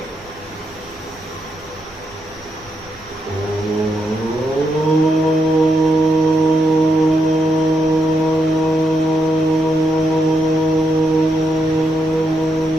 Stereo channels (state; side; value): noise; right; hum, 30 dB below the sound